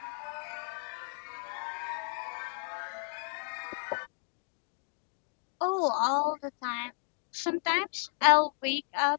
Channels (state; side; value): silent; right; 56 dB below the other